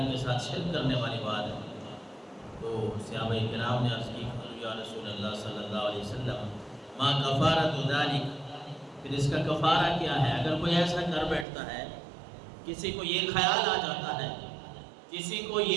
کے ساتھ شرک کرنے والی بات ہے۔ تو صحابہ کرام نے عرض کی یا رسول اللہ صلی اللہ علیہ وسلم ما کفارۃ ذالک، پھر اس کا کفارہ کیا ہے؟ اگر کوئی ایسا کر بیٹھتا ہے، کسی کو یہ خیال آ جاتا ہے، کسی کو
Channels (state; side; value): drops out; left; at 11.5 s